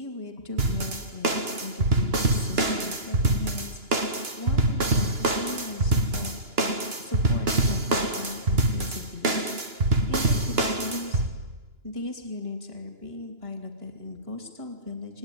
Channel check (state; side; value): late; left; 2.9 ms